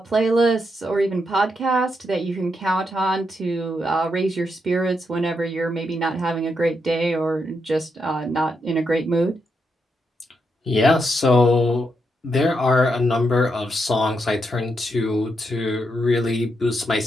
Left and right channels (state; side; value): normal; both; correlation 0.81